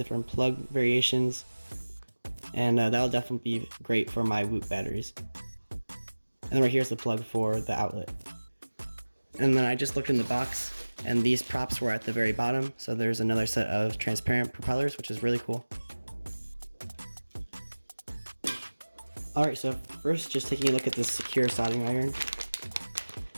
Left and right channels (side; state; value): both; inverted; correlation -1.00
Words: plug variations, and that'll definitely be great for my Whoop batteries. And then right here's the plug for the outlet. And then I just looked in the box, and these props were at the very bottom, so there's another set of transparent propellers, which is really cool. Alright, so first just taking a look at this Sequre soldering iron.